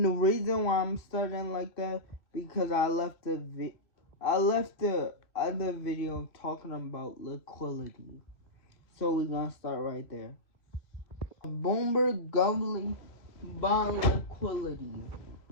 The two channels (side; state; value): right; late; 2.7 ms